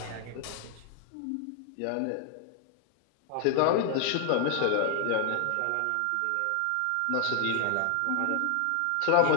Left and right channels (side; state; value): both; different; correlation 0.00